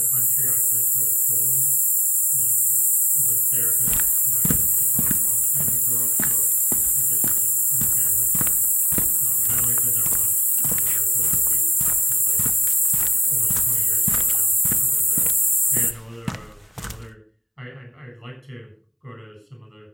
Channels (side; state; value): both; identical; correlation 1.00